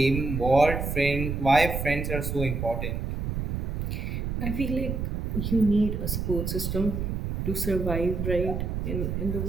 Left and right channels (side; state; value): right; noise; rumble, 2 dB below the sound